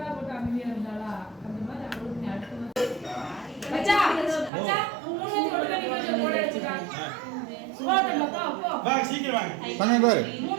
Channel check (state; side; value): drops out; left; at 4.5 s